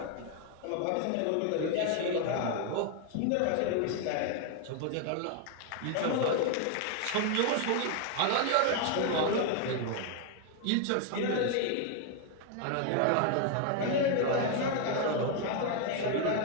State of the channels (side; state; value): both; different; correlation 0.01